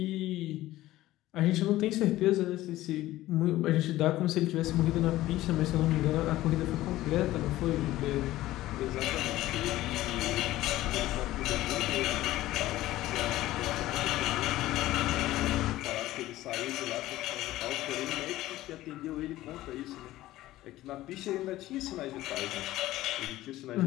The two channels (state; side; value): quieter; right; 15.9 dB